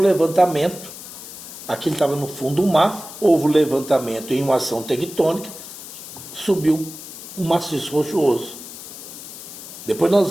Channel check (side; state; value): left; noise; hiss, 13 dB below the sound